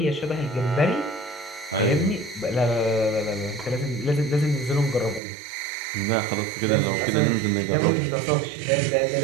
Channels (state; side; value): drops out; left; at 5.2 s